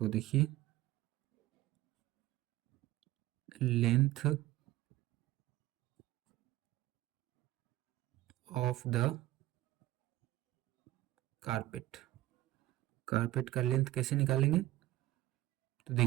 देखिए length of the carpet, carpet का लेंथ कैसे निकालेंगे, तो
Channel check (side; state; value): left; quieter; 16.1 dB